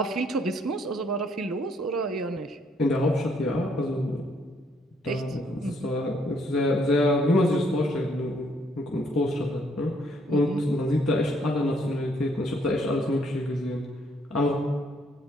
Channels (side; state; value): both; normal; correlation 0.68